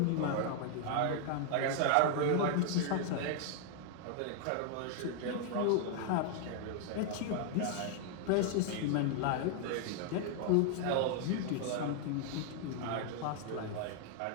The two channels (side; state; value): both; different; correlation 0.00